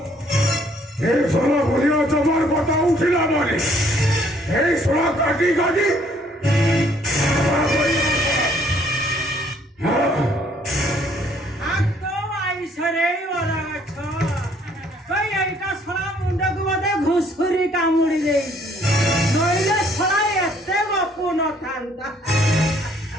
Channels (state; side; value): normal; both; correlation 0.63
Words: ଏ ସୋଳ ଭୁଲିଆ ଜମାର କଥା ଉଠିଲା ପରେ এই সোলা কাটি কাটি হাত আইসরে বরগছ কই এইটা ছড়া মুন্ডକୁ ବୋଧେ ଘୁଷୁରି କାମୁଡି ଦେଇଛି ନইলে ছড়া ଏତେ ଗପୁ ନଥାନ୍ତା